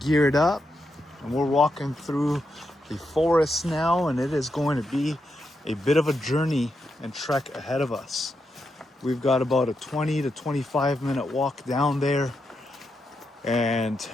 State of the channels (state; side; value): normal; both; correlation 0.84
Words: up and we're walking through the forest now, and it is going to be a bit of a journey and trek ahead of us. We've got about a 20 to 25 minute walk down there. And